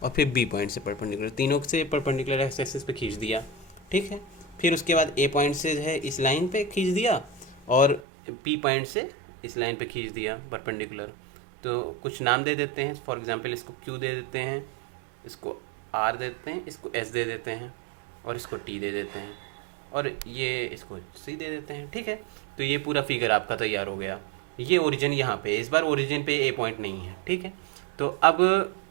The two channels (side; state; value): left; drops out; at 8.0 s